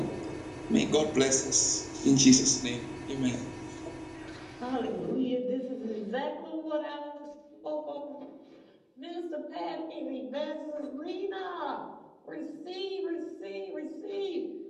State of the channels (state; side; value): identical; both; correlation 1.00